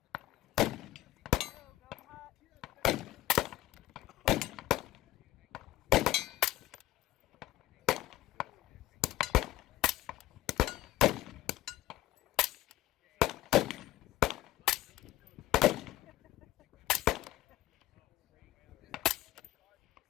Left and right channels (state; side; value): quieter; right; 15.3 dB